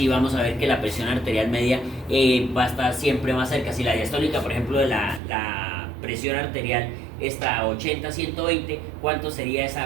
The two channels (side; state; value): left; drops out; at 5.2 s